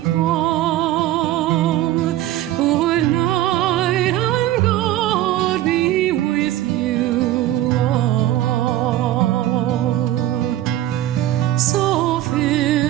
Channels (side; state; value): left; quieter; 14.0 dB